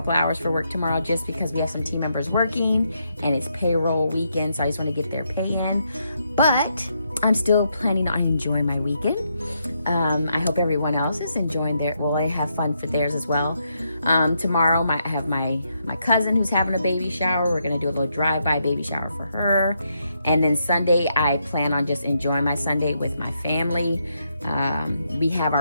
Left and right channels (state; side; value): inverted; both; correlation -0.79